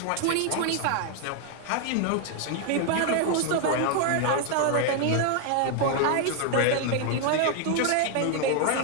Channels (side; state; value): both; different; correlation 0.00